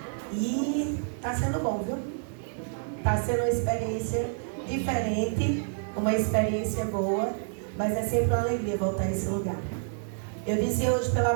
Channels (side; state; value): left; silent; 59 dB below the other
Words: E está sendo bom, viu? Está sendo uma experiência diferente, uma experiência boa, mas é sempre uma alegria voltar a esse lugar. Eu disse hoje pela